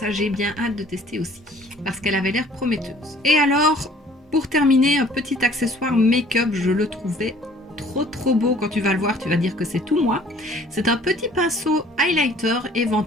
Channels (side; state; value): both; normal; correlation 0.55